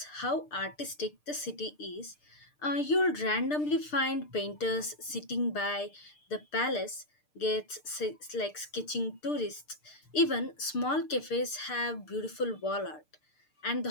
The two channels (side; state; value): right; late; 6.7 ms